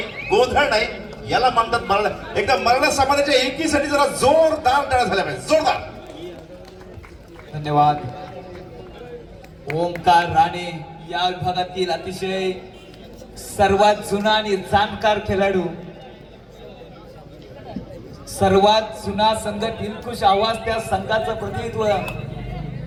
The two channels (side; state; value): both; identical; correlation 1.00